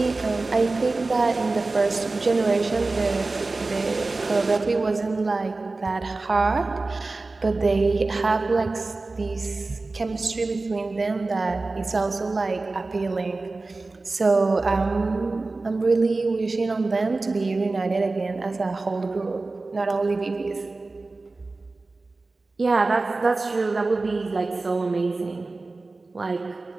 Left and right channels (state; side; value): quieter; left; 3.4 dB